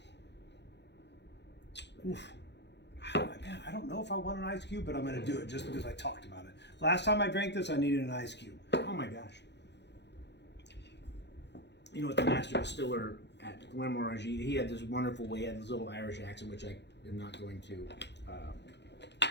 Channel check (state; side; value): late; right; 0.50 ms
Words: Oof. Man, I don't know if I want an ice cube, but I'm going to do it just because I talked about it. Last time I drank this, I needed an ice cube. Oh my gosh. You know what, the master distiller at Glenmorangie, he had this wonderful way, he had this little Irish accent, which I am not going to